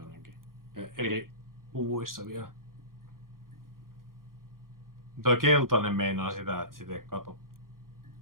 ainakin. Eri puvuissa vielä. Toi keltainen meinaa sitä, että sitä ei kato.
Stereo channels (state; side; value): late; left; 0.91 ms